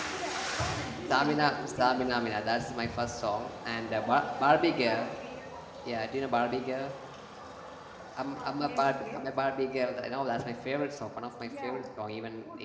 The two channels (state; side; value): identical; both; correlation 1.00